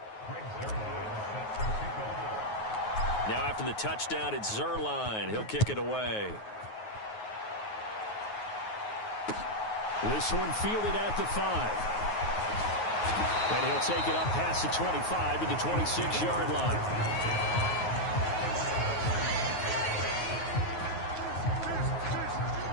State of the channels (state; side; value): late; right; 9.4 ms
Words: Now after the touchdown, it's Zerline. He'll kick it away. This one fielded at the 5. And he'll take it up past the 25 to the 26-yard line.